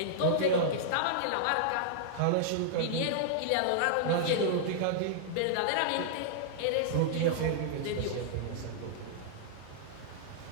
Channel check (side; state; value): both; different; correlation -0.02